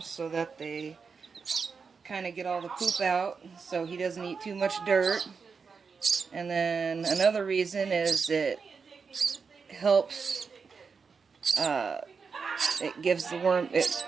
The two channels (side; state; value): left; quieter; 5.4 dB